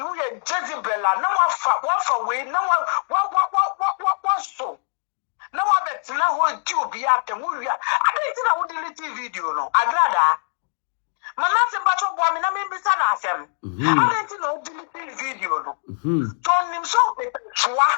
ye Jezebel na wa way na what so. No one that's now going to be at the movie. I didn't delete video. No, Agradaa. My last battle woman, I mean, Mr. Nasem. I didn't know delete video. No, told him so.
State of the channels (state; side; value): silent; right; digital silence